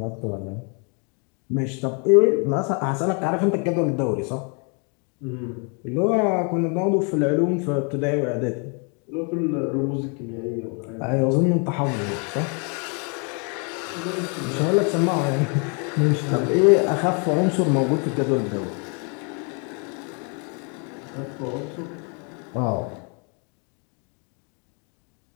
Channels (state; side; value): quieter; right; 36.9 dB